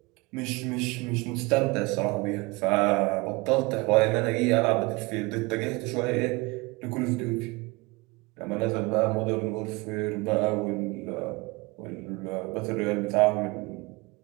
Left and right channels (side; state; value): left; quieter; 24.9 dB